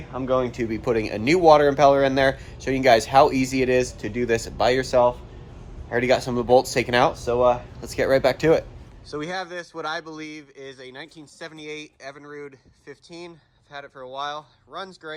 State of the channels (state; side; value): identical; both; correlation 1.00